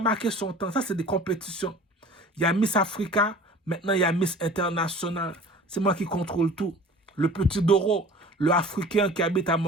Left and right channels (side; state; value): both; normal; correlation 0.44